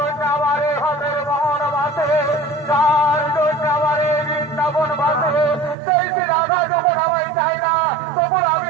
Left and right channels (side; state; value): left; drops out; at 5.8 s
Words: আমার এই হাতের মোহন বাসে, যার জন্য আমার এই বৃন্দাবন বাসে, সেই শ্রীরাধা যখন আমায় চাই না তখন আমি